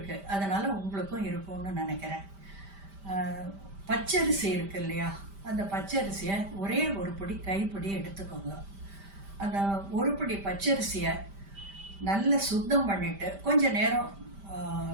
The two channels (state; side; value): late; left; 5.1 ms